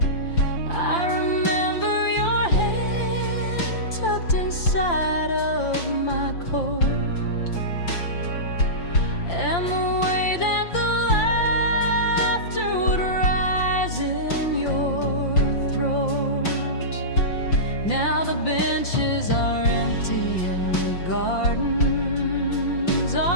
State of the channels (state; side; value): late; right; 5.8 ms